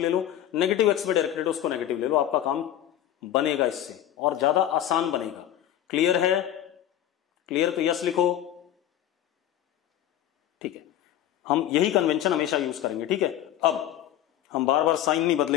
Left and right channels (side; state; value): right; quieter; 11.7 dB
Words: लो, नेगेटिव एक्स में डायरेक्टेड उसको नेगेटिव ले लो। आपका काम बनेगा इससे और ज्यादा आसान बनेगा। क्लियर है? क्लियर तो यस लिखो। ठीक है, हम यही कन्वेंशन हमेशा यूज करेंगे। ठीक है, अब हम बार बार साइन नहीं